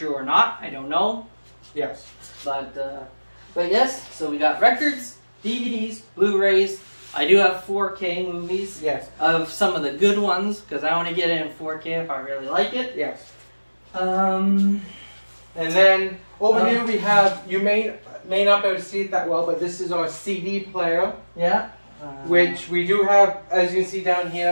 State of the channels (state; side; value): inverted; both; correlation -1.00